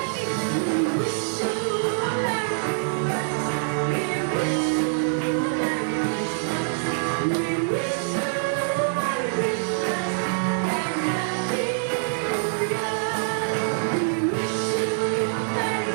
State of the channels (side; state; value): left; silent; digital silence